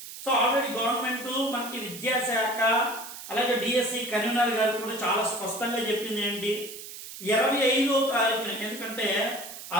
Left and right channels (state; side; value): noise; right; hiss, 12 dB below the sound